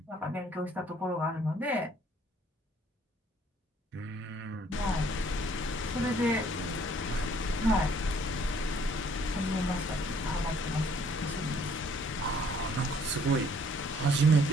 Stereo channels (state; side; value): normal; both; correlation 0.61